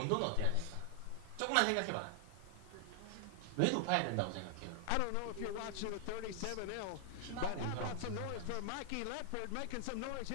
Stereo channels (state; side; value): different; both; correlation 0.00